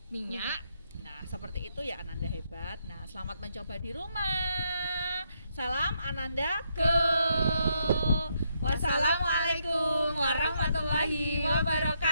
Minyak. Nah, seperti itu ya Ananda Hebat. Nah, selamat mencoba di rumah. Salam Ananda Go. Wassalamualaikum warahmatullahi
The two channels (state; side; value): inverted; both; correlation -0.77